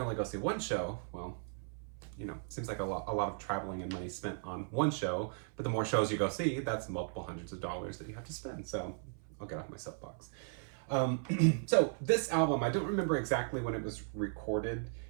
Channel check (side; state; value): left; silent; 53 dB below the other